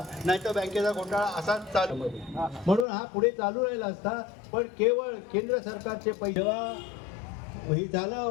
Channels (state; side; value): drops out; right; at 2.9 s